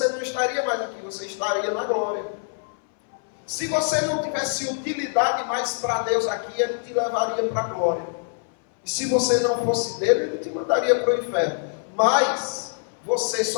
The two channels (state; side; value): silent; right; 60 dB below the other